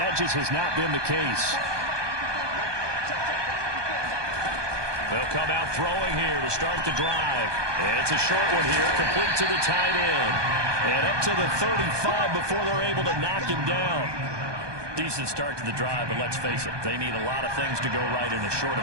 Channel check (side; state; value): left; late; 1.2 ms